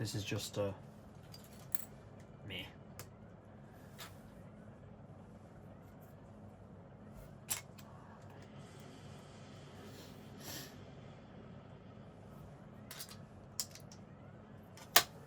is just a meh.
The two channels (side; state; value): both; identical; correlation 1.00